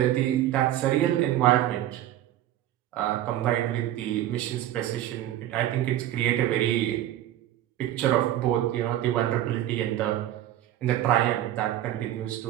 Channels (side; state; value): left; quieter; 13.1 dB